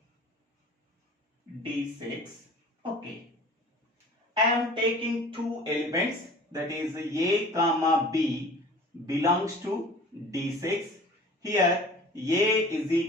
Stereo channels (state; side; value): normal; both; correlation 0.44